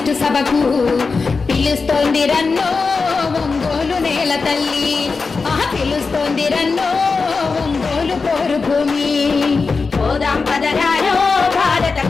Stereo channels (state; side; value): quieter; right; 4.5 dB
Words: కమ్యూనిస్టు సభకు పిలుస్తోంది రన్నో ఒంగోలు నేల తల్లి పిలుస్తోంది రన్నో ఒంగోలు పోరు భూమి పోదాం పదరారో భారత